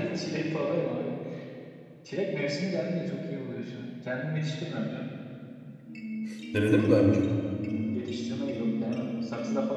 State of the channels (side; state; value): both; identical; correlation 1.00